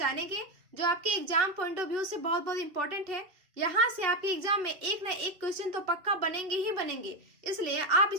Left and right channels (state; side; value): late; left; 2.7 ms